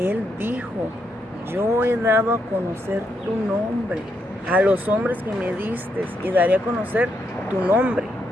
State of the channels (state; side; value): normal; both; correlation 0.79